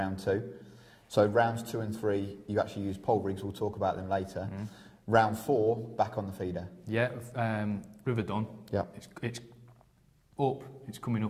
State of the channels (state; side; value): identical; both; correlation 1.00